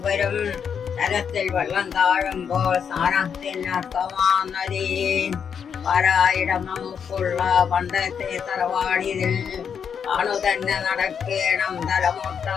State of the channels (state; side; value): quieter; right; 7.2 dB